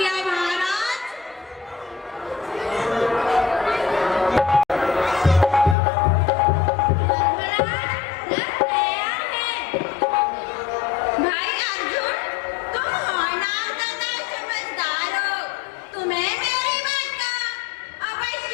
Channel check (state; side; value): drops out; right; at 5.8 s